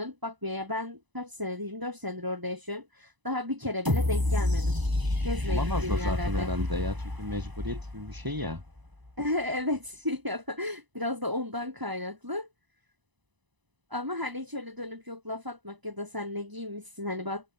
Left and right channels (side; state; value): left; late; 1.0 ms